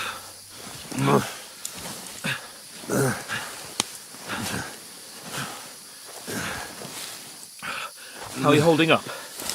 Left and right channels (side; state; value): both; identical; correlation 1.00